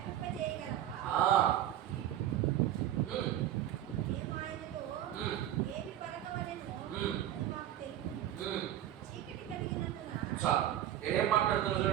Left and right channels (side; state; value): left; quieter; 12.0 dB